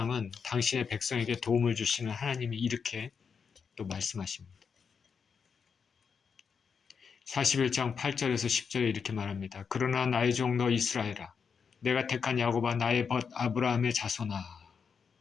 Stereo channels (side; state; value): right; quieter; 6.2 dB